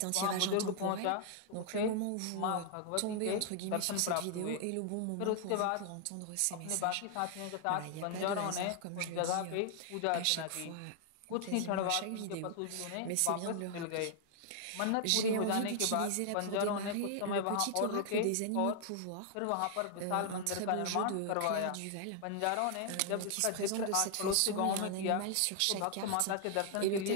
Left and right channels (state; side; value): different; both; correlation 0.00